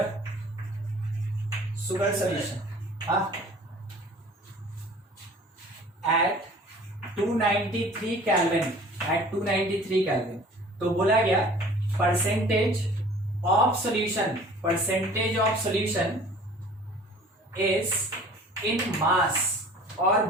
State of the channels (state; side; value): normal; both; correlation 0.48